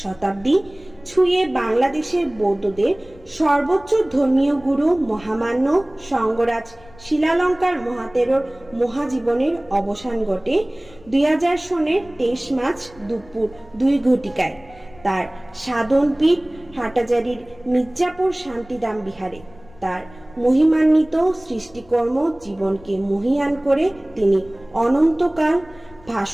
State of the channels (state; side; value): noise; left; rumble, 24 dB below the sound